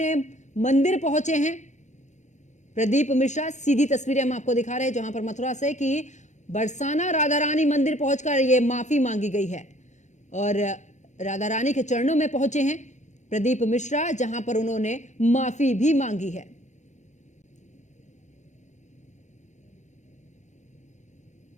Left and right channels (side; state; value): right; late; 0.34 ms